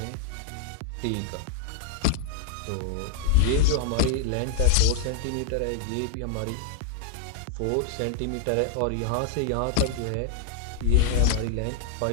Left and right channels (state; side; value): different; both; correlation -0.01